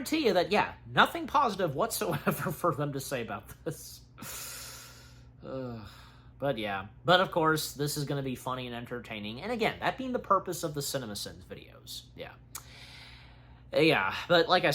you that, nothing positive whatsoever for them to say about this. But, of course, this is going to be funny and entertaining. And, again, that being the purpose of the CinemaSins videos. But like I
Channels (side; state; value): both; identical; correlation 1.00